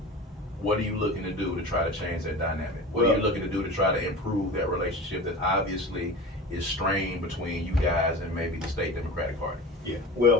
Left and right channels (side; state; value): both; normal; correlation 0.33